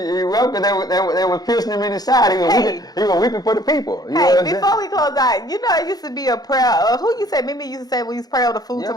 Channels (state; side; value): late; right; 0.19 ms